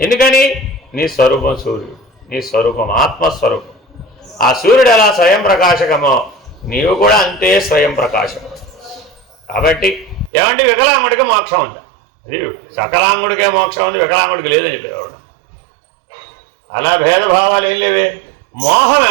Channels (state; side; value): drops out; left; at 10.3 s